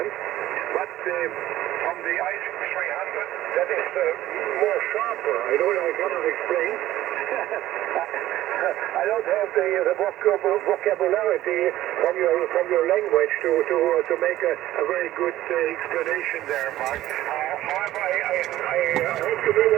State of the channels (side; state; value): left; quieter; 14.6 dB